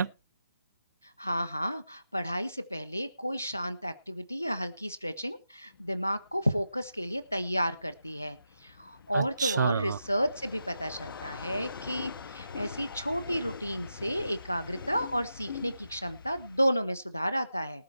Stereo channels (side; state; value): both; inverted; correlation -0.88